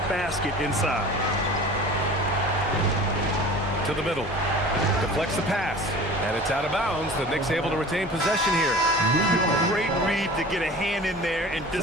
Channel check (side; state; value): both; normal; correlation 0.40